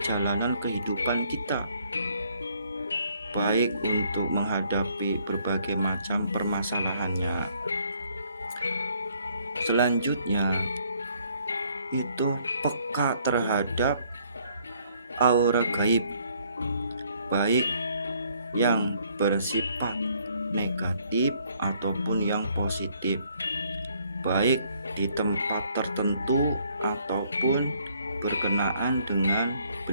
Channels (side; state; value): both; inverted; correlation -0.66